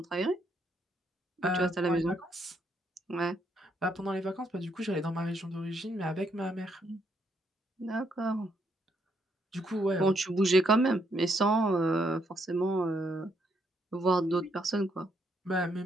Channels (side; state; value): both; normal; correlation 0.74